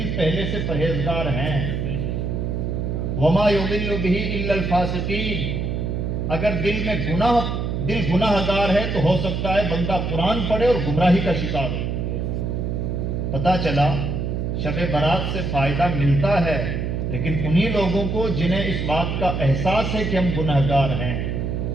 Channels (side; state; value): right; noise; hum, 2 dB below the sound